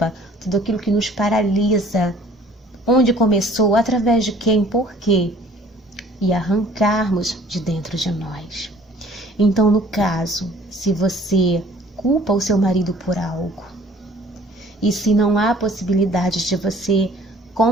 tudo aquilo que nos paralisa, onde começou, através de quem, por quê, e arrancarmos de dentro de nós. Então, no caso, se você culpa o seu marido por algo, E se não há possibilidade de você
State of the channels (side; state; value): both; normal; correlation 0.53